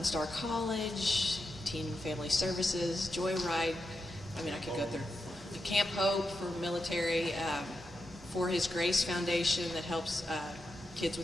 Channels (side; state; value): both; normal; correlation 0.87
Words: Star College, Teen Family Services, Joyride. I mean, I could go through. The Camp Hope for military, For His Grace Foundation that helps kids